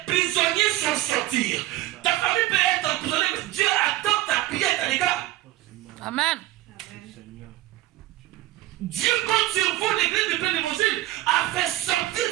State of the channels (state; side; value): quieter; left; 16.1 dB